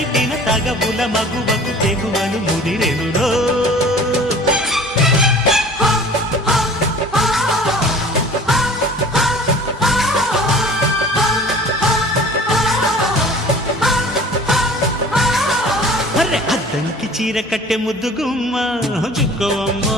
తగబుల మగువకు తెగువను ముదిరెనురో అద్దంకి చీర కట్టె ముద్దు గుమ్మ చుక్కవమ్మ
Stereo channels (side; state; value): both; normal; correlation 0.45